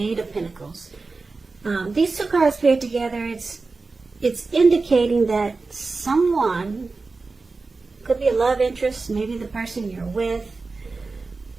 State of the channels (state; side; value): quieter; left; 3.9 dB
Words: Eight of Pentacles. These two cards paired together, it's indicating that someone, could be a love interest, maybe the person you're with,